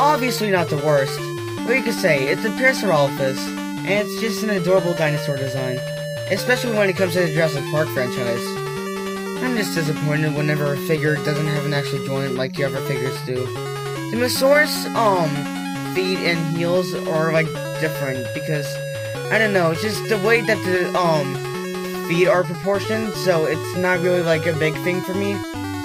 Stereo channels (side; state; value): both; identical; correlation 1.00